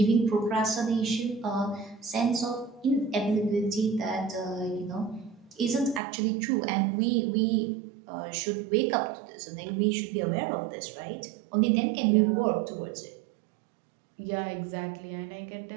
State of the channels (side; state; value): left; drops out; at 6.0 s